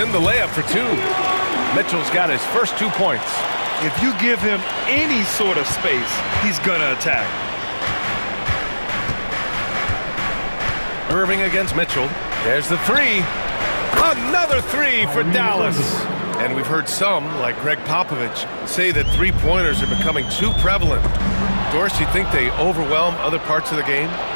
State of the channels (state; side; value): inverted; both; correlation -1.00